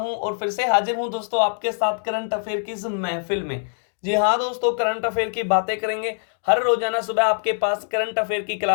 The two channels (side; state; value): right; silent; digital silence